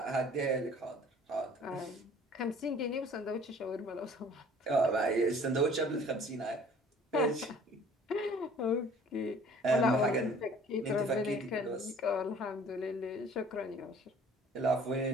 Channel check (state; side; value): normal; both; correlation 0.52